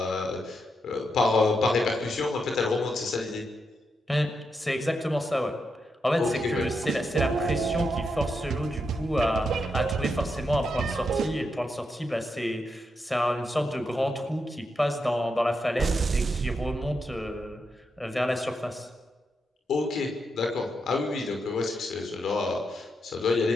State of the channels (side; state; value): both; normal; correlation 0.84